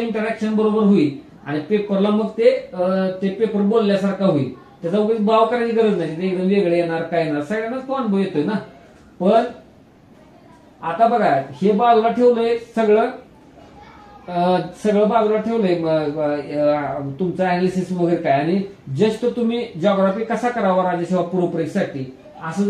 बरोबर होईल आणि पेपरला मग ते पेपर बोलल्यासारखा होईल. त्याचा उगाच भाव करायची गरज नाही. ते एकदम वेगळे येणार काय येणार, सगळ्यांनाच तो अनुभव येतोय ना. पण आता बघा हे बाजूला ठेवलंय सगळं बाजूला ठेवलंय तुमचं अनालिसिस वगैरे काय, आणि जस्ट तुम्ही जॉग्राफी कसा करावा राज्यसेवा पूर्व परीक्षेसाठी असं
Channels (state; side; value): identical; both; correlation 1.00